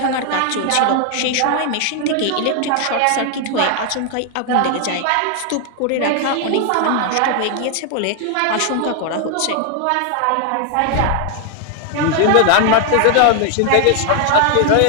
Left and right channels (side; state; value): both; different; correlation 0.00